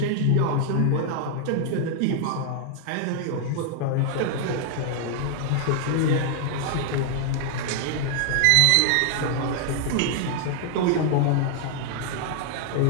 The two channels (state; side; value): different; both; correlation 0.00